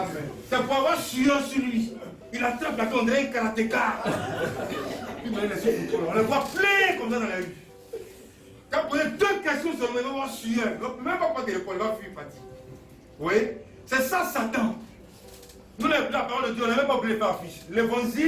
C'est pour avoir sueur sur lui. Il attrape la on dirait un karatéka. On le voit plein comme ça dans la rue. Quand on pose 2 questions sur le même, on va avoir sueur. Même pas prendre téléphone, il va fuir fatigue. Vous voyez? C'est ça Satan. Nous, la parole de Dieu, on n'a même pas voulu faire affiche.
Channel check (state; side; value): identical; both; correlation 1.00